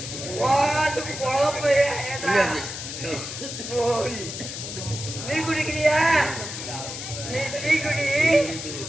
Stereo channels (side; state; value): left; noise; hiss, 7 dB below the sound